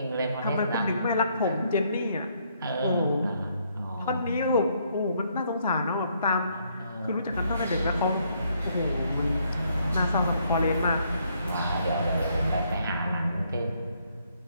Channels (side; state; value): both; inverted; correlation -0.71